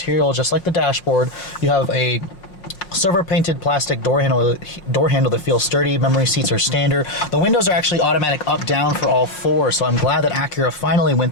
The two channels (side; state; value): right; late; 5.5 ms